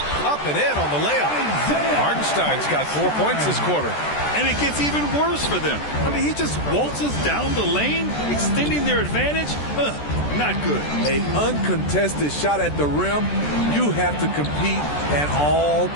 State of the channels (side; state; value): right; late; 14 ms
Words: Up and in on the layup. Hartenstein's got 4 points this quarter. And it gets even worse for them. I mean, he just waltzes down the lane, extending their advantage. Not good. An uncontested shot at the rim, you have to compete at all